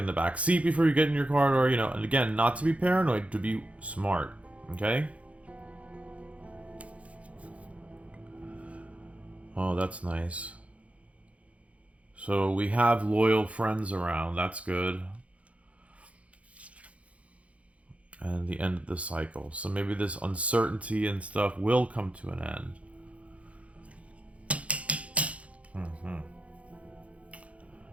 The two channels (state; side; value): late; left; 0.064 ms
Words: the back seat before you get in your car door, and again, not to be paranoid, to be smart, okay? Oh, that's nice. So we have loyal friends around, that's good. And the end of the cycle. So maybe this uncertainty and stuff will come to an end.